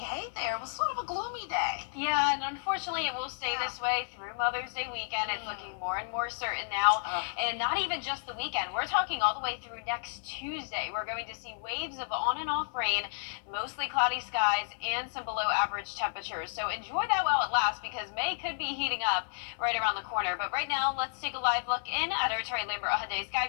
Hey there, it was sort of a gloomy day. Yeah, and unfortunately it will stay this way through Mother's Day weekend. It's looking more and more certain now. And not even just the weekend. We're talking all the way through next Tuesday. We're going to see waves of on and off rain, mostly cloudy skies, and some below average temperatures. So enjoy that while it lasts, because May could be heating up right around the corner. But right now, let's take a live look in at our Terry Lambert Hyundai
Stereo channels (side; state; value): right; silent; digital silence